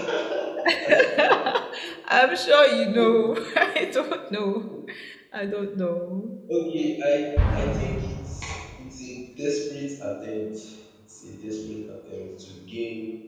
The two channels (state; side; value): identical; both; correlation 1.00